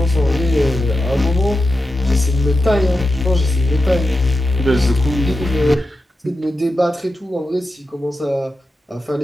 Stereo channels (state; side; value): normal; both; correlation 0.90